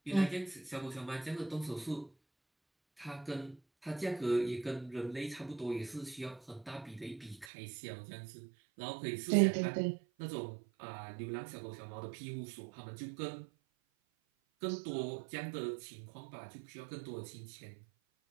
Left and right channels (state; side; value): drops out; left; at 7.5 s